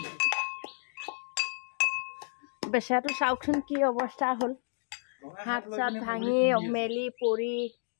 বেচাটো চাওকচোন কি অৱস্থা হ'ল হাত চাত ভাঙি মেলি পৰি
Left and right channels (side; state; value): right; silent; digital silence